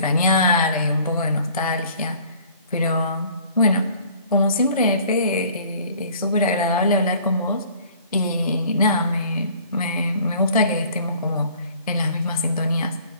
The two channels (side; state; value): both; inverted; correlation -0.52